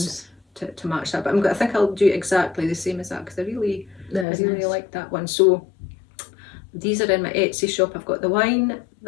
To match that, but I think I'll do exactly the same as that because I really nice. like that one. So these are in my Etsy shop. I've got the wine,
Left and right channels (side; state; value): right; drops out; at 4.2 s